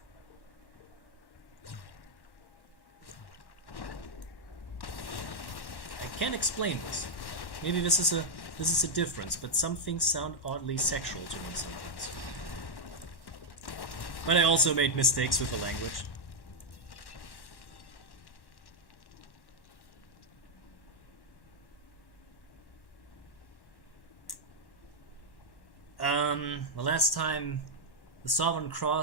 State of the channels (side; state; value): right; late; 1.1 ms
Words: I can't explain this. Maybe this is a difference, but some things sound oddly sexual to me sometimes. But I also made mistakes with the language. The last time the Sovereign